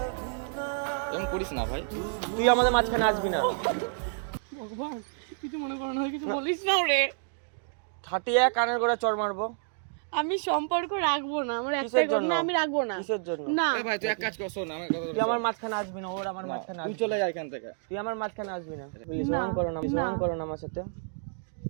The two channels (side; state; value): left; silent; 58 dB below the other